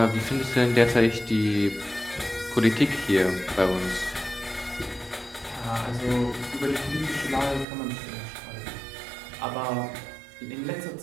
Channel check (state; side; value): drops out; left; at 7.7 s